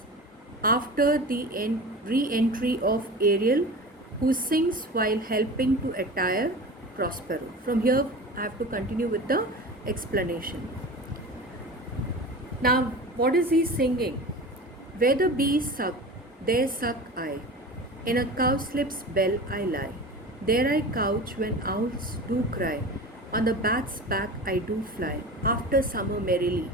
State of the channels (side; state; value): both; normal; correlation 0.33